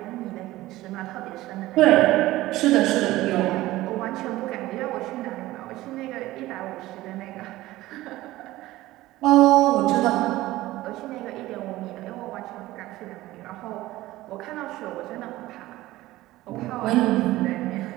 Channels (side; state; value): left; quieter; 17.1 dB